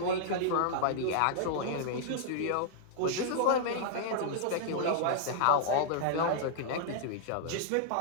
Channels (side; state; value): both; different; correlation -0.01